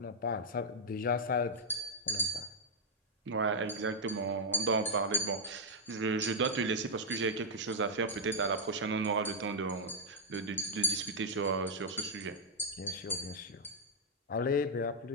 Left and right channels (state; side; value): normal; both; correlation -0.06